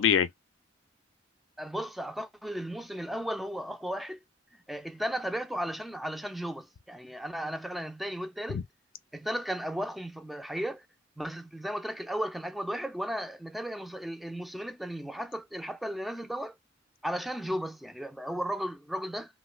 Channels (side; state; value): both; normal; correlation 0.69